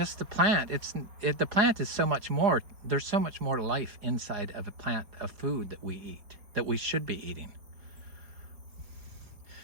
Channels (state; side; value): late; left; 4.8 ms